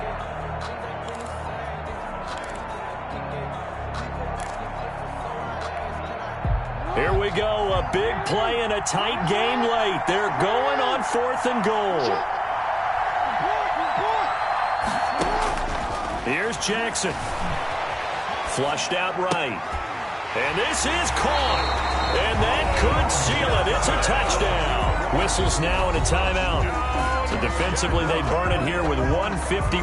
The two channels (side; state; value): both; identical; correlation 1.00